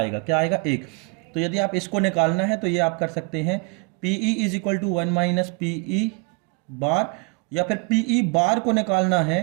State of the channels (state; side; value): quieter; left; 34.4 dB